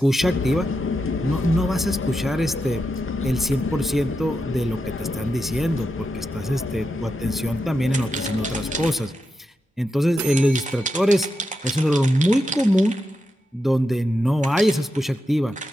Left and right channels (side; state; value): both; normal; correlation 0.87